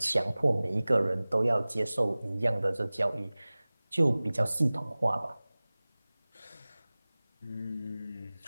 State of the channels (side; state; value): both; inverted; correlation -0.99